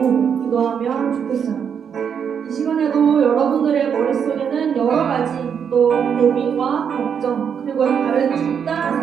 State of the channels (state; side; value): quieter; left; 7.5 dB